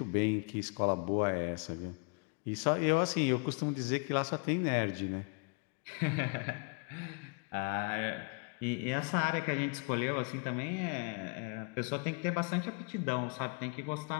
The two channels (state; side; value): quieter; right; 35.5 dB